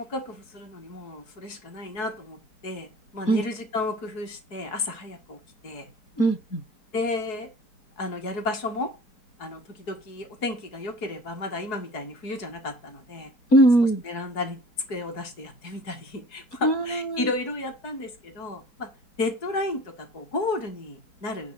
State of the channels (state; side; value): late; right; 4.7 ms